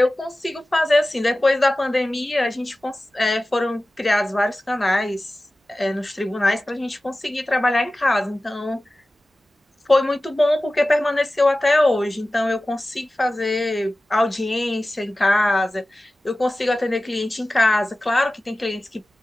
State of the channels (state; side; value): normal; both; correlation 0.96